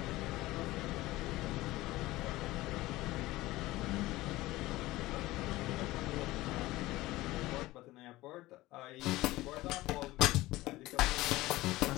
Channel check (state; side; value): quieter; right; 18.3 dB